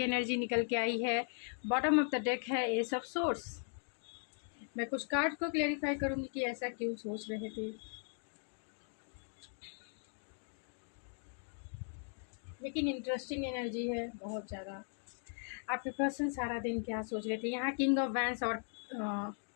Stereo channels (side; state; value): right; silent; 52 dB below the other